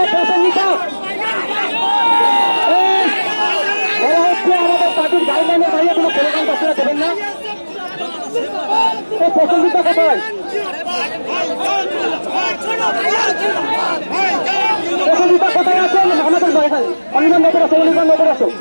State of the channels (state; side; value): inverted; both; correlation -1.00